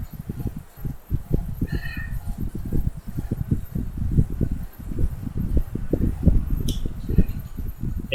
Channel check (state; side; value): identical; both; correlation 1.00